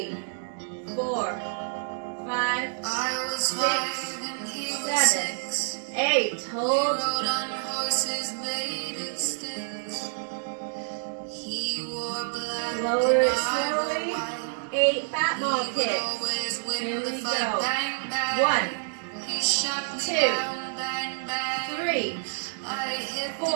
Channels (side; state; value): left; silent; digital silence